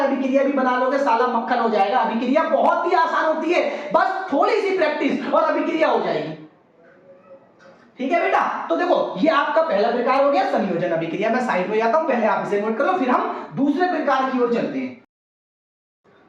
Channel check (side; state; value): both; identical; correlation 1.00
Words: अभिक्रिया भी बना लोगे साला मक्खन हो जाएगा। अभिक्रिया बहुत ही आसान होती है, बस थोड़ी सी प्रैक्टिस और अभिक्रिया हो जाएगी। ठीक है बेटा, तो देखो ये आपका पहला प्रकार हो गया संयोजन अभिक्रिया। मैं साइड में जाता हूं, पहले आप इसे नोट कर लो, फिर हम दूसरे प्रकार की ओर चलते हैं।